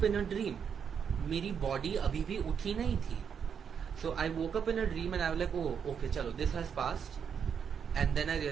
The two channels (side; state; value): left; quieter; 7.3 dB